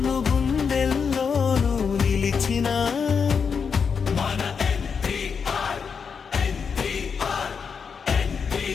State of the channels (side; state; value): right; quieter; 6.1 dB